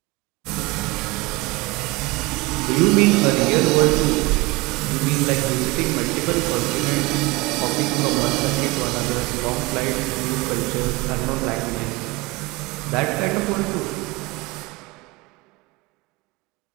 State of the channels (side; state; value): left; quieter; 23.3 dB